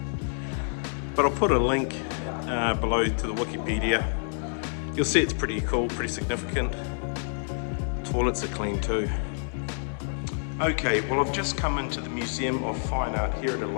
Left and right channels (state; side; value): silent; right; digital silence